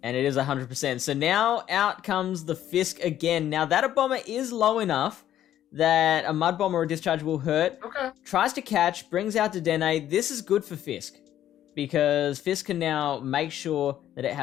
And it is 100%. So now out comes the Fisk again. Now that a bomber is low enough that a Mud Bomb or a Discharge will hurt. Okay. Tries to catch, brings out Dedenne. This is good for Fisk, because Fisk can now make sure that it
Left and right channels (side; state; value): right; quieter; 11.7 dB